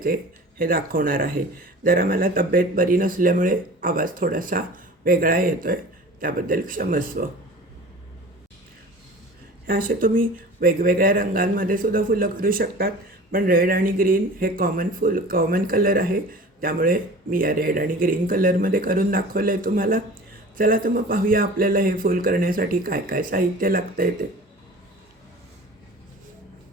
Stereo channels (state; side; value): normal; both; correlation 0.40